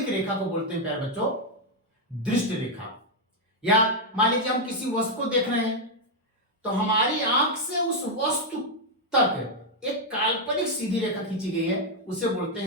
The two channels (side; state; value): both; normal; correlation 0.00